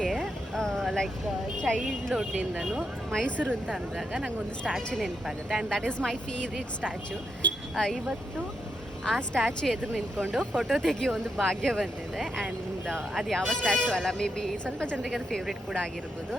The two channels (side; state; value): both; normal; correlation 0.82